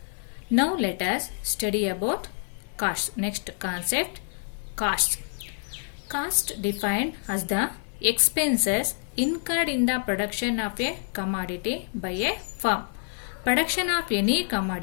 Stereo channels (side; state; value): right; silent; 60 dB below the other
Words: Now let us study about costs. Next concept, costs. Cost defined as the expenses incurred in the production of a commodity by a firm. Production of any